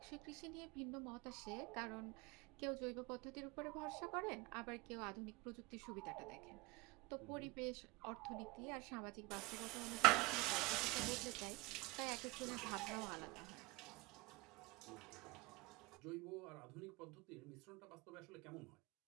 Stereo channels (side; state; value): left; quieter; 24.2 dB